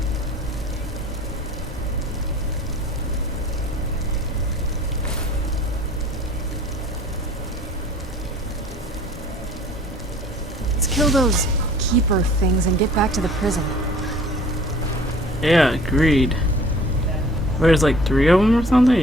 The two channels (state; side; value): normal; both; correlation 0.50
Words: Kill those keeper things and get back to the prison. Yeah, agreed. There's like 3 of them or something?